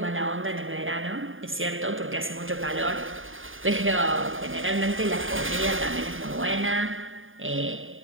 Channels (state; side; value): late; left; 0.59 ms